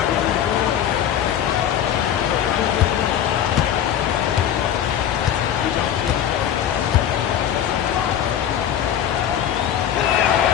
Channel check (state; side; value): quieter; right; 10.0 dB